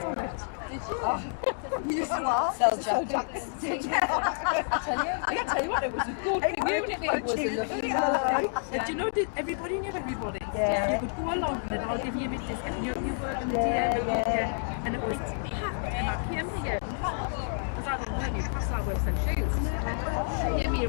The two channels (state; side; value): silent; right; digital silence